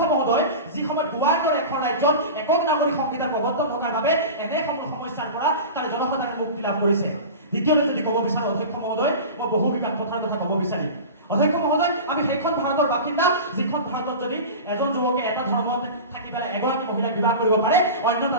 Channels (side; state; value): both; inverted; correlation -0.31